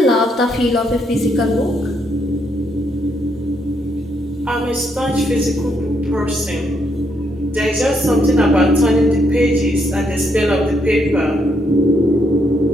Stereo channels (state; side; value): normal; both; correlation 0.75